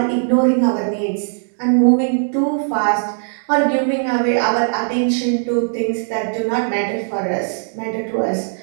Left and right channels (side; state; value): left; silent; digital silence